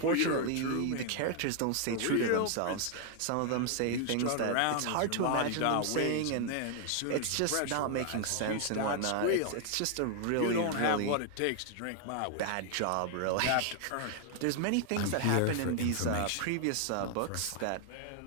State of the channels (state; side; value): different; both; correlation 0.00